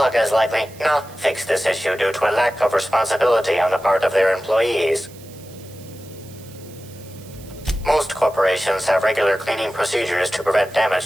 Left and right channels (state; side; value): noise; right; hiss, 22 dB below the sound